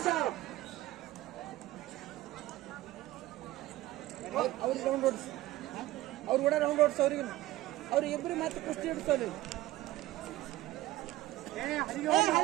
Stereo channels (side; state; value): left; quieter; 16.3 dB